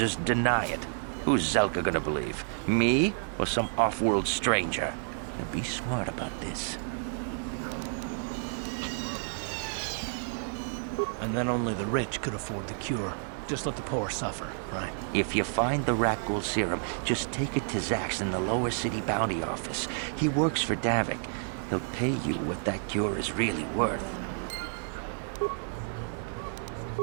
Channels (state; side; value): silent; left; 58 dB below the other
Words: deny it. Who's Zelka gonna believe? Me or some off-world stranger? Now be smart about this. And then only the rich could afford the cure. just let the poor suffer, right? If you find the rat ghoul serum, just take it to Zax in the lower city bounty office. He works for Davik. He'll pay you what that cure is really worth.